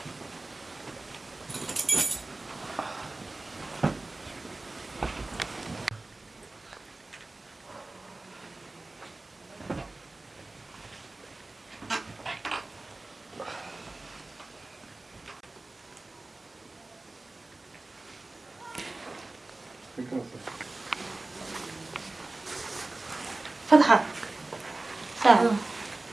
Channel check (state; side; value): quieter; left; 3.0 dB